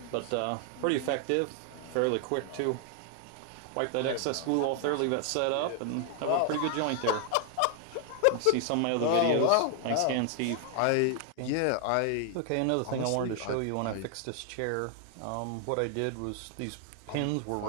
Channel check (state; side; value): different; both; correlation 0.00